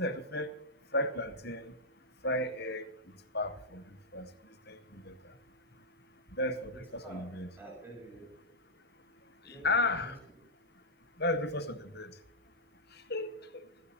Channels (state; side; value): normal; both; correlation -0.08